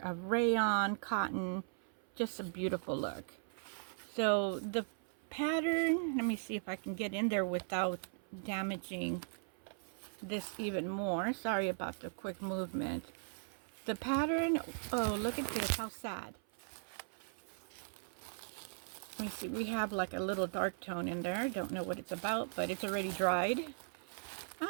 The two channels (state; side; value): silent; left; 52 dB below the other